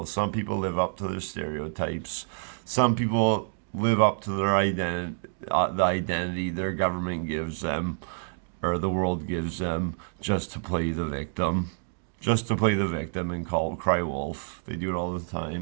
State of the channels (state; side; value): silent; left; digital silence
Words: Some people live up to their stereotypes. Some people live up to their the identity their government gives them, or the world gives them, just to play the victim. Just to play the victim and cry wolf. They do it all the